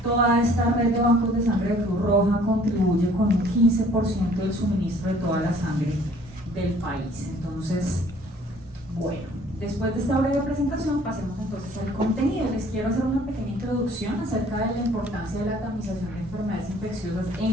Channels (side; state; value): both; normal; correlation 0.55